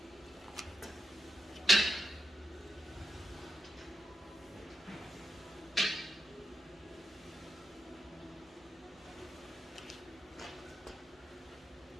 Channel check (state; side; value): normal; both; correlation 0.85